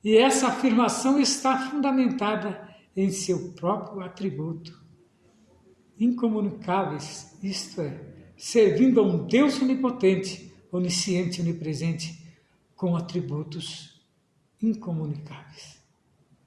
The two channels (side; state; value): both; identical; correlation 1.00